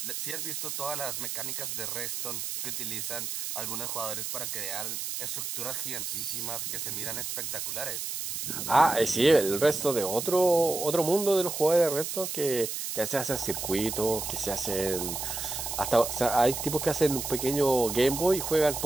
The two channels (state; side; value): noise; right; hiss, 4 dB below the sound